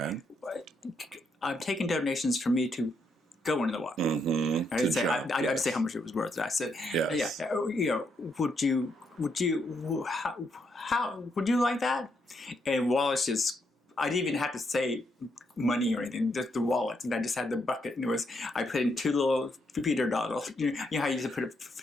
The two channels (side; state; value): both; normal; correlation 0.77